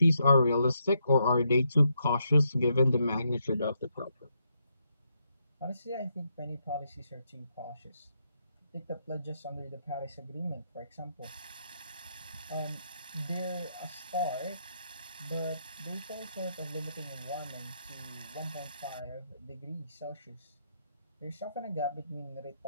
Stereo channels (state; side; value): inverted; both; correlation -0.79